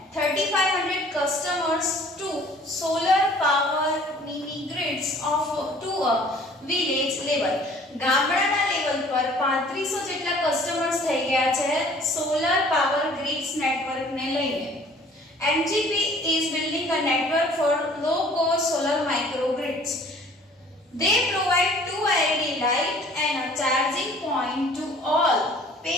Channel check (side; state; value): both; normal; correlation 0.52